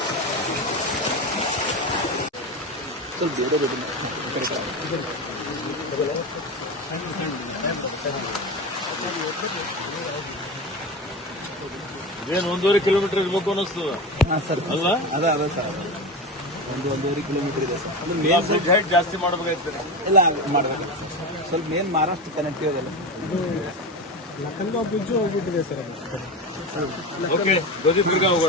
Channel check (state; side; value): normal; both; correlation 0.23